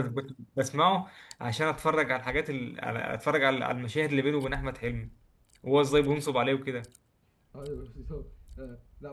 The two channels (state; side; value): identical; both; correlation 1.00